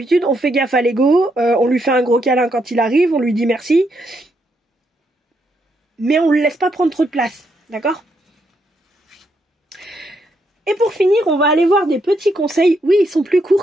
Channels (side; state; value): both; normal; correlation 0.77